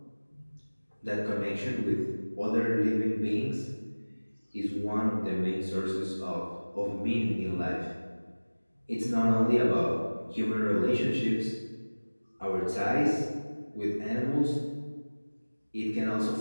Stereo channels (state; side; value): inverted; both; correlation -1.00